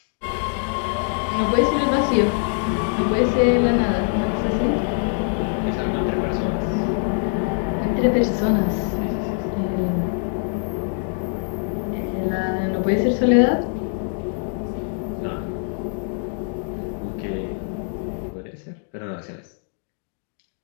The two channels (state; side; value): silent; right; 56 dB below the other